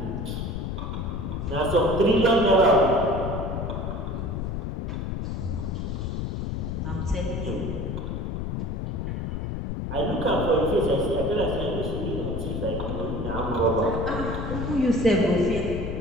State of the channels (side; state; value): left; noise; rumble, 3 dB below the sound